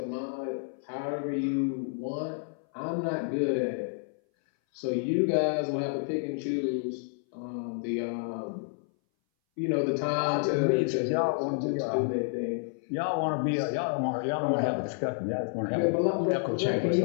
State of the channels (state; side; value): silent; right; 58 dB below the other